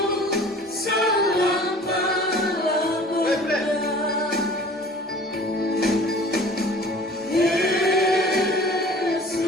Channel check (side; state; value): both; normal; correlation 0.46